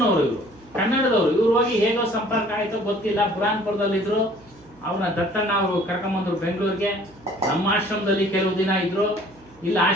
ಇವರು ಕನ್ನಡದವರು. ಇವ್ರು ಹೋಗಿ ಹೇಗೋ ಸಂಪರ್ಕ ಆಯ್ತೋ ಗೊತ್ತಿಲ್ಲ, ಬುರಾನ್ಪುರದಲ್ಲಿದ್ರು. ಅವ್ರನ್ನ ದತ್ತಣ್ಣ ಅವರು ಕರ್ಕೊಂಬಂದ್ರು ಬೆಂಗಳೂರಿಗೆ. ನಮ್ಮ ಆಶ್ರಮದಲ್ಲಿ ಕೆಲವು ದಿನ ಇದ್ರು. ಇಲ್ಲಿ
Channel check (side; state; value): right; noise; hum, 26 dB below the sound